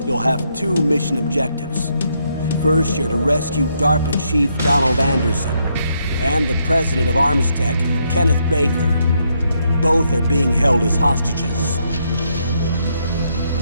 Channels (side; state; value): both; inverted; correlation -0.76